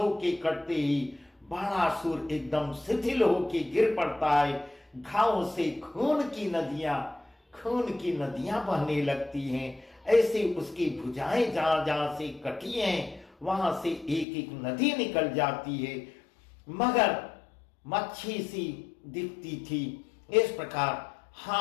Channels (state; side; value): drops out; right; at 14.2 s